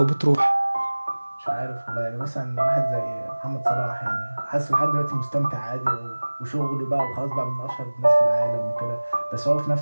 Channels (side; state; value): both; inverted; correlation -1.00